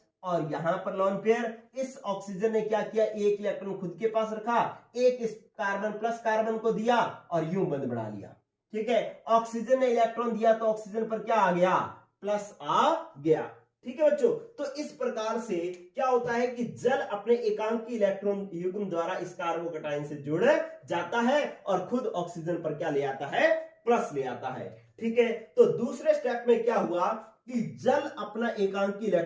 और यहां पर लोन पेयर। इस ऑक्सीजन ने क्या किया, एक इलेक्ट्रॉन खुद के पास रखा, एक इस कार्बन प्लस कार्बन को दिया और यूं बंद बढ़ा लिया। ठीक है, ऑक्सीजन ने इलेक्ट्रॉन दिया तो ऑक्सीजन पर क्या आ गया, प्लस आ गया। ठीक है बच्चों, तो इस प्रकार से क्या होता है कि जल अपने एकांकी इलेक्ट्रॉन युग्म द्वारा इस कार्बोकैटायन से जुड़ जाता है और खुद ऑक्सीजन पर क्या ले आता है, प्लस ले आता है। ठीक है, तो दूसरे स्टेप में क्या हुआ कि जल अपना एकांकी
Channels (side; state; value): both; identical; correlation 1.00